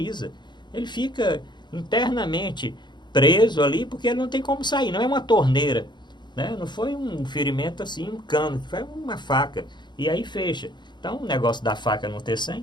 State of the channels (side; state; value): right; late; 0.21 ms